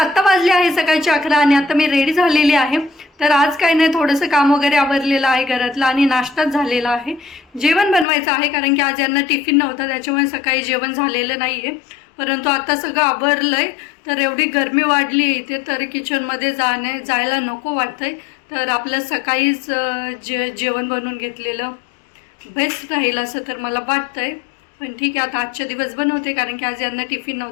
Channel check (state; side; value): drops out; right; at 8.1 s